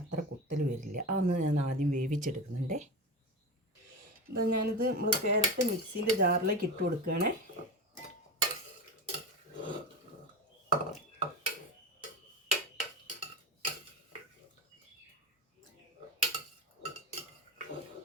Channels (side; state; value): both; normal; correlation 0.24